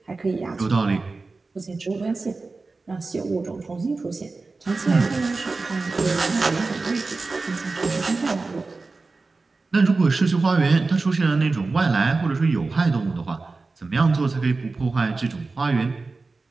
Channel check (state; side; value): quieter; left; 3.8 dB